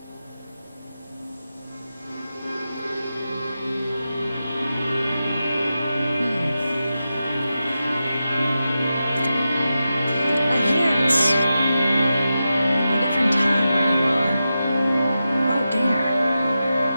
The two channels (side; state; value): both; inverted; correlation -0.91